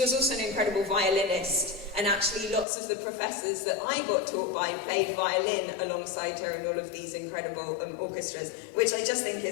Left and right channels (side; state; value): right; drops out; at 2.7 s